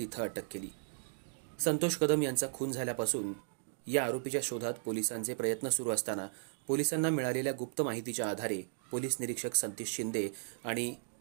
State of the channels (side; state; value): left; silent; digital silence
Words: अटक केली। संतोष कदम यांचा खून झाल्यापासून या आरोपीच्या शोधात पोलिसांचे प्रयत्न सुरू असताना पोलिसांना मिळालेल्या गुप्त माहितीच्या आधारे पोलीस निरीक्षक सतीश शिंदे आणि